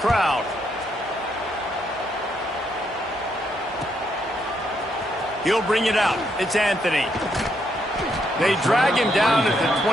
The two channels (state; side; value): normal; both; correlation 0.76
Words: crowd. He'll bring it out. It's Anthony. They drag him down at the